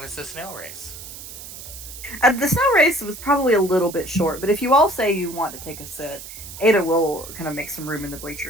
is the snail race? The snow race was probably a little bit short, but if you all say you want to take a sit, Ada will kind of make some room in the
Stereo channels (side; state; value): right; noise; hiss, 13 dB below the sound